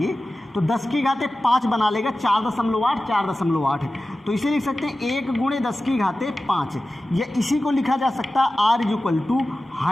तो 10 की घाते 5 बना लेगा, 4.8 4.8, तो इसे लिख सकते हैं 1 गुणे 10 की घाते 5, या इसी को लिखा जा सकता है R is equal to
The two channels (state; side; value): normal; both; correlation 0.95